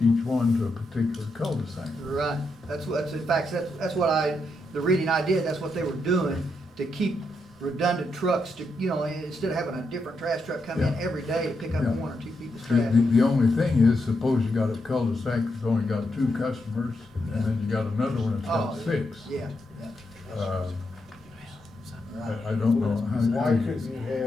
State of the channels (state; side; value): normal; both; correlation 0.82